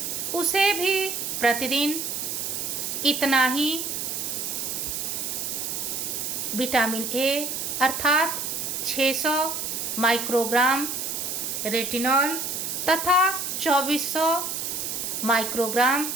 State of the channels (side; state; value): right; noise; hiss, 3 dB below the sound